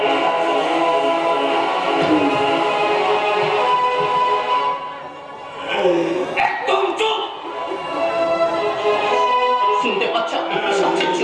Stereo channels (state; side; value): identical; both; correlation 1.00